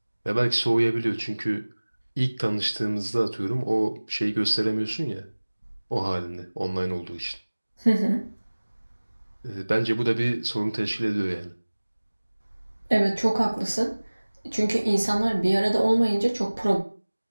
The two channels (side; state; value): both; inverted; correlation -1.00